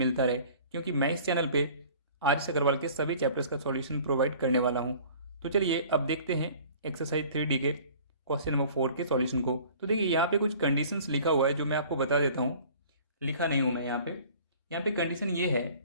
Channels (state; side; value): inverted; both; correlation -0.48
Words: रहे, क्योंकि मैं इस चैनल पे आर एस अग्रवाल के सभी चैप्टर्स का सॉल्यूशन प्रोवाइड करने वाला हूँ। तो चलिए अब देखते हैं एक्सरसाइज 3D के क्वेश्चन नंबर 4 के सॉल्यूशन को। तो देखिए यहाँ पे कुछ कंडीशंस लिखा हुआ है जो मैं आपको बता देता हूँ। लिखा नहीं हूँ मैं यहाँ पे कंडीशन ये है